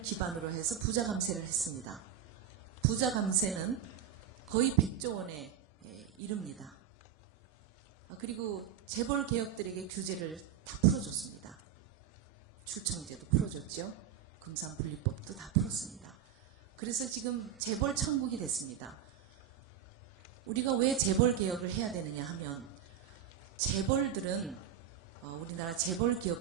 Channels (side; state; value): left; quieter; 9.4 dB